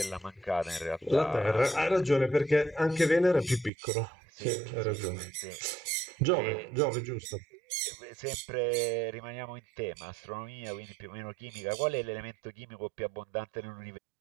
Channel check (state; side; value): drops out; left; at 3.7 s